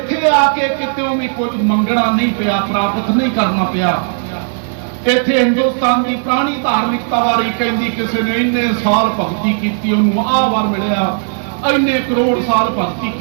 आके कितों भी कुछ मंगना नहीं पिया, प्राप्त नहीं करना पिया। इत्थे हिंदुस्तान की पुरानी धार्मिकता बारे कहती किसी ने इन्ने साल भगती की उन्होंने आह वार मिलिया, इन्ने करोड़ साल भगती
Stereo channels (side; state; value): left; silent; digital silence